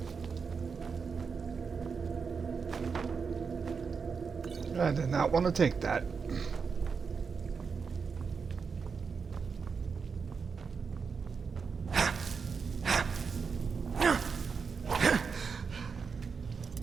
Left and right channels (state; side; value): quieter; left; 5.5 dB